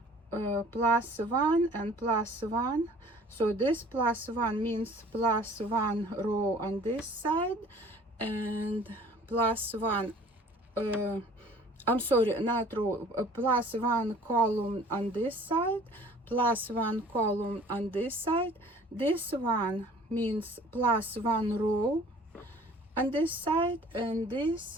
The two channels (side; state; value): both; normal; correlation 0.51